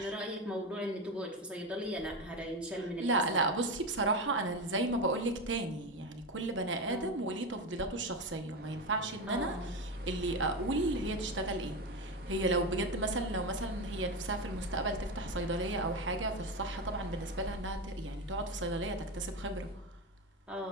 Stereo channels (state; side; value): normal; both; correlation 0.17